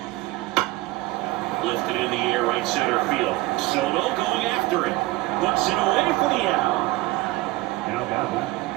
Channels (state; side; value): quieter; left; 19.7 dB